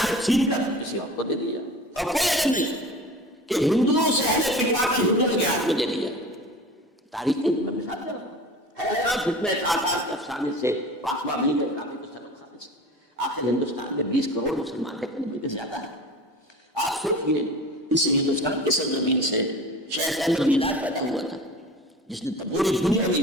چھین کر کسی اور کو دے دیا، اور کوئی عجب نہیں کہ ہندوؤں سے اہل فتوا کی ہندوؤں کے ہاتھ میں دے دیا، تاریخی میں مثال دے رہا ہوں، فتنہ تاتار کے افسانے سے پاسباں مل گئے کعبے کو سنو کھانے سے، آخر ہندوستان میں 20 کروڑ مسلمان ہیں، کہیں بھی زیادہ ہے، آپ سوچئے اس ہندوستان کی سرزمین سے شیخ احمد میلاد پیدا ہوا تھا جس نے پوری دنیا میں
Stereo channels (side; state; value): both; normal; correlation 0.37